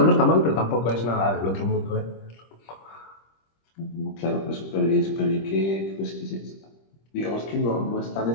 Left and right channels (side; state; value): right; late; 25 ms